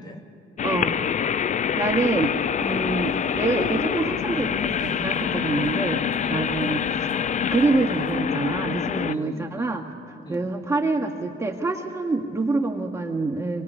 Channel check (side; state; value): both; normal; correlation 0.53